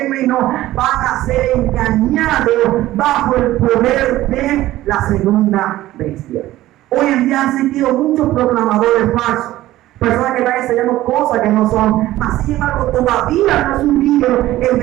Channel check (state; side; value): quieter; left; 15.5 dB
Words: van a ser engañados bajo el poder de la segunda bestia. Hoy en día han sentido muchos proclamadores falsos, personas que están enseñando cosas que no son. Sin embargo, todavía no ha surgido el